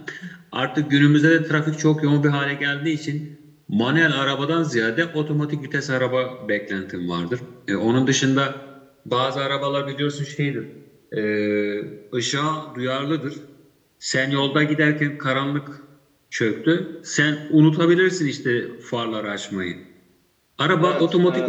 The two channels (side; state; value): both; identical; correlation 1.00